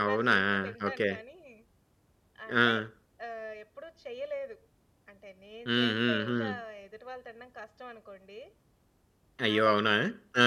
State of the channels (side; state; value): both; identical; correlation 1.00